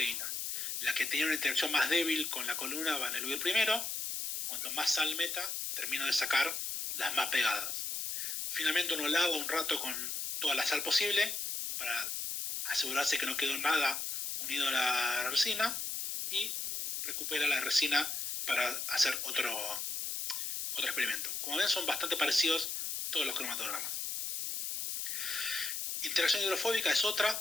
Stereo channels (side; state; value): left; noise; hiss, 3 dB below the sound